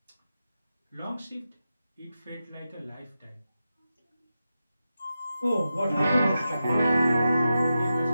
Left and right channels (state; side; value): inverted; both; correlation -0.90